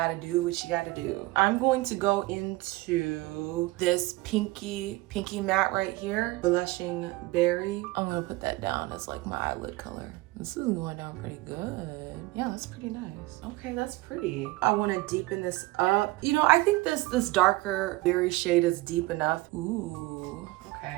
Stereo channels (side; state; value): left; quieter; 20.4 dB